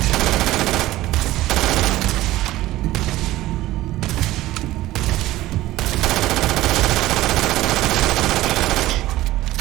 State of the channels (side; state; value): left; quieter; 16.4 dB